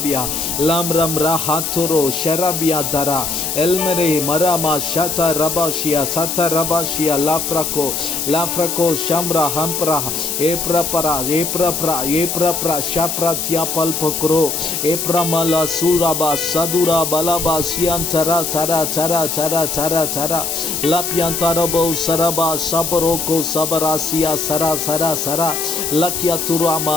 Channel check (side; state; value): left; noise; hiss, 2 dB below the sound